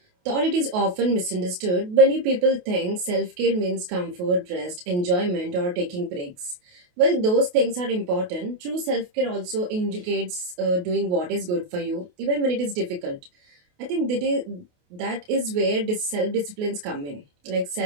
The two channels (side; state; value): left; late; 28 ms